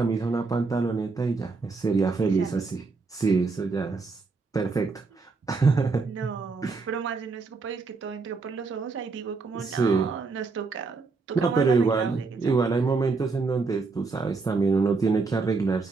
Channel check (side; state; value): left; quieter; 4.3 dB